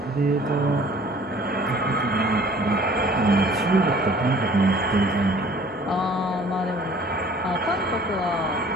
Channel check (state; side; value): normal; both; correlation 0.52